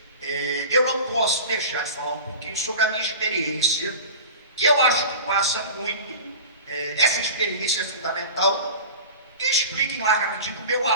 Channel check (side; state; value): both; inverted; correlation -0.35